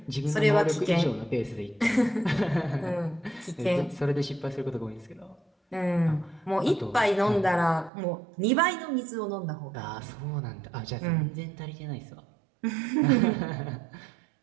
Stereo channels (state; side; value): drops out; left; at 7.9 s